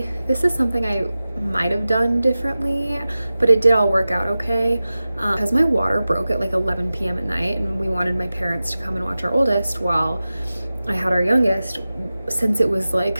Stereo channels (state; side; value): inverted; both; correlation -0.96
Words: this is something I might have done differently, but it did all work out okay. Because my water broke at like 11 p.m. at night, and we wanted my parents to come and watch our oldest while I had our youngest. Since it was like